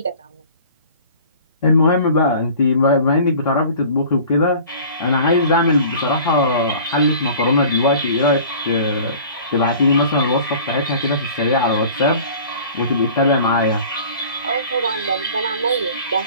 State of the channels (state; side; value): inverted; both; correlation -0.45